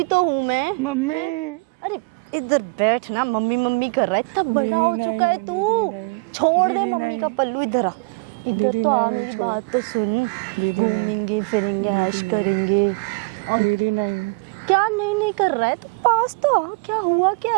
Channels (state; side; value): quieter; left; 30.0 dB